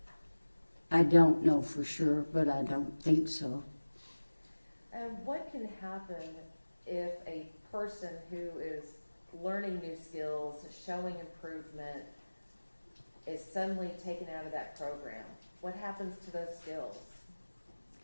I don't know for sure, but I don't think so. And what can happen if a person who is learning new skills, showing improvement, is suddenly taken out of that program? What happens to those skills?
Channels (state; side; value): inverted; both; correlation -1.00